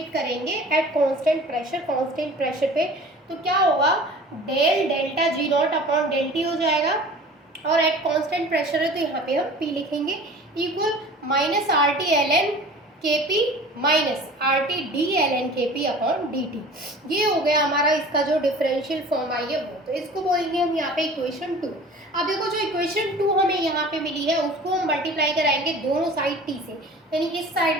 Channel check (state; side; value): normal; both; correlation 0.42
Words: करेंगे at constant pressure, constant pressure पे। तो क्या होगा, del delta G not upon del T हो जाएगा, और एट कांस्टेंट प्रेशर है तो यहाँ पे हम P लिखेंगे equal minus RT ln Kp minus RT d ln Kp upon dt। ये हो गया हमारा इसका जो डिफरेंशियल फॉर्म आई है वो, तो इसको बोलेंगे हम यहाँ पे इक्वेशन 2। अब देखो जो इक्वेशन 2 हमें यहाँ पे मिली है उसको हम मल्टीप्लाई कराएंगे दोनों साइड t से, यानी इस साइड